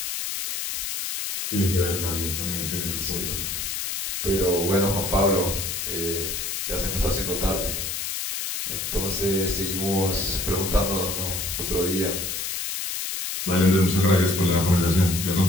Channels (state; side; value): noise; left; hiss, 3 dB below the sound